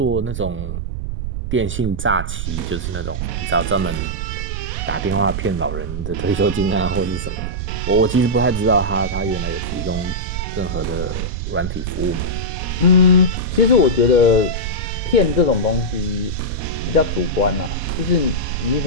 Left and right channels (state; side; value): noise; right; rumble, 4 dB below the sound